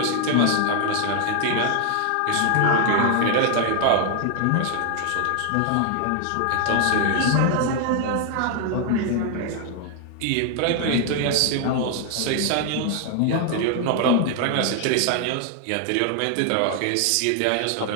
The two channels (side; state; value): both; different; correlation 0.00